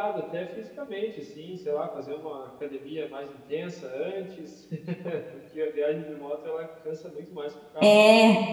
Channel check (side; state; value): both; identical; correlation 1.00